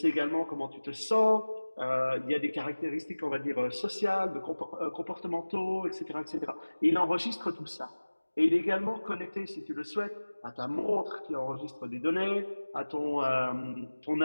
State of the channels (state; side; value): inverted; both; correlation -1.00